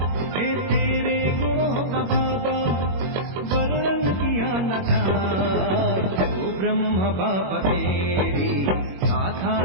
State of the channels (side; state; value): left; late; 21 ms